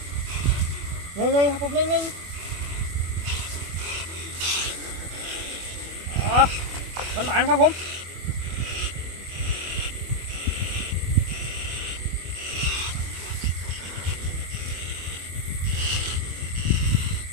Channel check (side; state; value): left; late; 25 ms